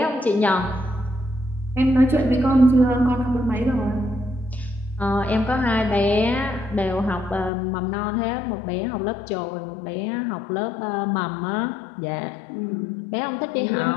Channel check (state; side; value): drops out; right; at 7.5 s